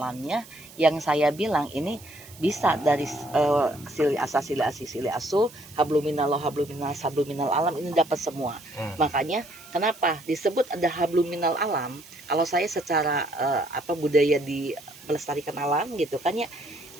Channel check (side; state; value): right; noise; hiss, 20 dB below the sound